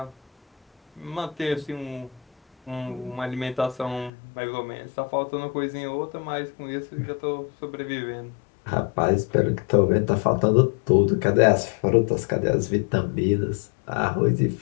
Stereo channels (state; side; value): drops out; right; at 4.1 s